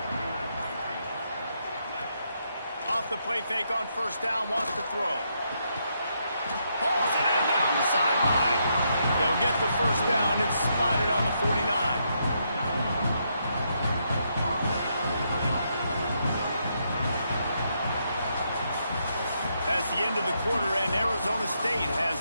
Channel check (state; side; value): inverted; both; correlation -0.78